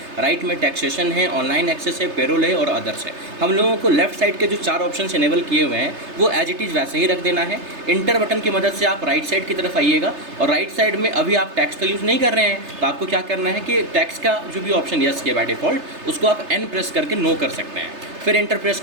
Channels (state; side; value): late; left; 3.3 ms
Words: राइट में टैक्सेशन है, ऑनलाइन एक्सेस है, पेरोल है और अदर्स है। हम लोगों को लेफ्ट साइड के जो 4 ऑप्शन इनेबल किए हुए हैं वो एज इट इज़ वैसे ही रख देना है। इंटर बटन की मदद से आप राइट साइड की तरफ आइएगा और राइट साइड में अभी आप टैक्स का यूज़ नहीं कर रहे हैं तो आपको क्या करना है कि टैक्स का जो भी ऑप्शन यस किया बाय डिफ़ॉल्ट उसको आप N प्रेस करके नो कर सकते हैं। फिर एंटर प्रेस